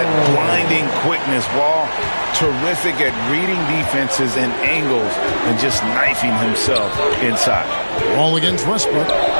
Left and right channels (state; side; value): inverted; both; correlation -1.00